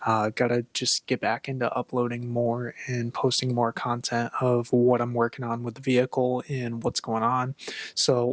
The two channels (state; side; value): identical; both; correlation 1.00